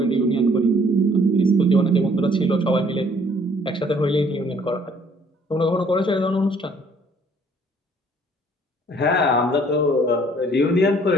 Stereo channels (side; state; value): both; normal; correlation 0.60